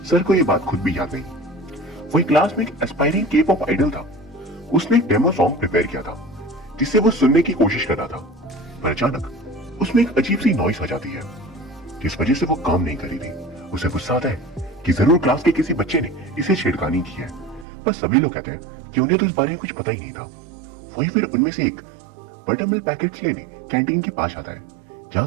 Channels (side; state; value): left; drops out; at 17.7 s